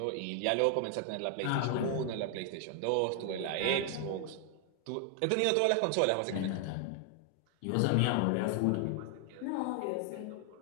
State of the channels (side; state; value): both; different; correlation 0.00